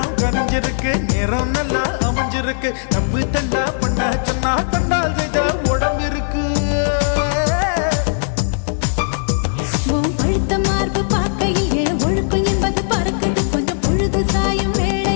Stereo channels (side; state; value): right; silent; 60 dB below the other